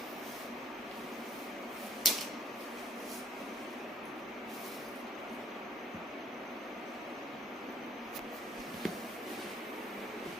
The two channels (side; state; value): both; normal; correlation 0.59